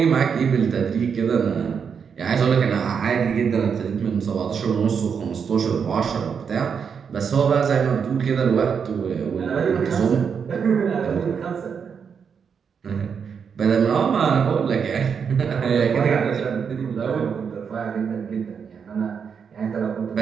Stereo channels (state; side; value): quieter; left; 6.6 dB